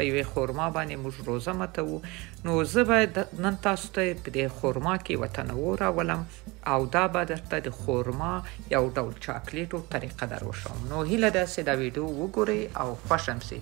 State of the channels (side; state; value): left; quieter; 24.3 dB